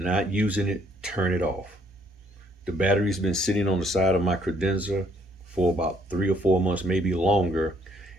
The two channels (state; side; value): normal; both; correlation 0.66